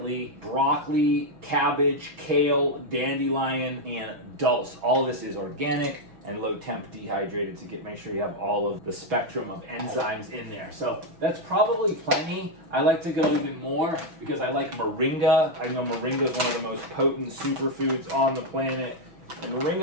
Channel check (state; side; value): late; left; 6.1 ms